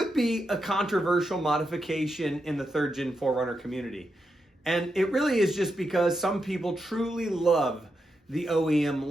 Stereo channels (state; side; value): normal; both; correlation 0.85